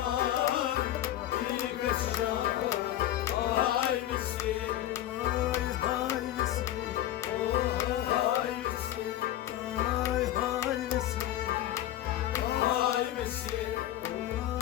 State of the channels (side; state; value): right; quieter; 13.2 dB